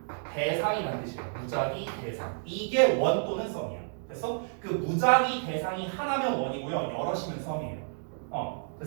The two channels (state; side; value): silent; left; digital silence